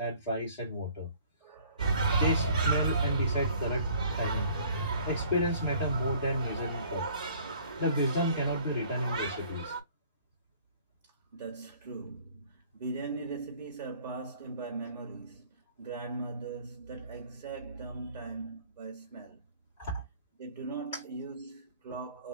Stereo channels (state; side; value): inverted; both; correlation -0.55